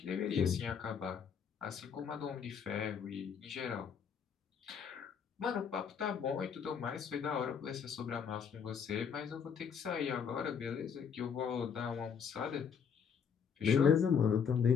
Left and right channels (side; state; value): right; quieter; 6.9 dB